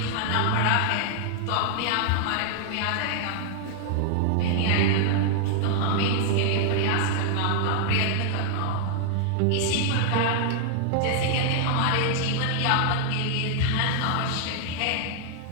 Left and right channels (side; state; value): both; different; correlation 0.00